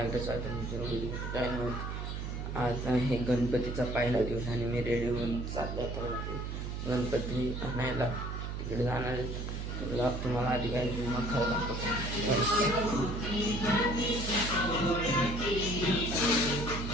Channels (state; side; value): noise; right; hum, 4 dB below the sound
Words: एकदा channel. आज आहे गणपतीचा पहिला दिवस आणि मी रेडी होऊन चाललो तर गणपती आणायला तिकडे जाणार आहे. तुम्हाला आधी काय मग